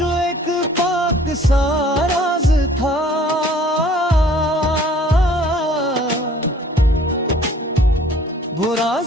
जो एक पाक सा राज था, वो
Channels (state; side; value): normal; both; correlation 0.54